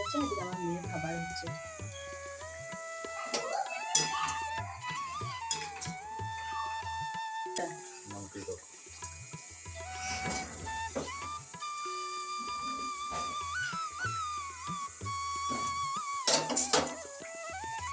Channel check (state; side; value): identical; both; correlation 1.00